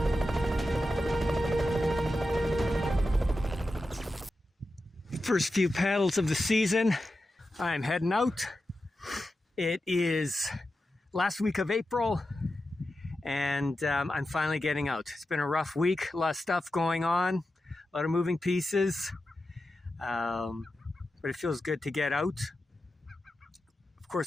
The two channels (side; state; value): both; normal; correlation 0.91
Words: First few paddles of the season. I'm heading out. It is last week of April, and I'm finally getting out. It's been a rough week, a lot of stuff going on, a lot of moving pieces, but it feels good to get out. Of